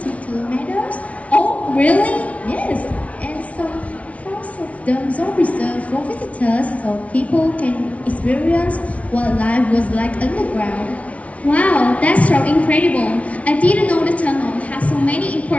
kilometers? Oh, really? Yes, and some parts of them are reserved for visitors so people can experience what life was like underground. Wow, that's so incredible. I didn't know the tunnel has so many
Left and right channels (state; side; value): late; right; 0.065 ms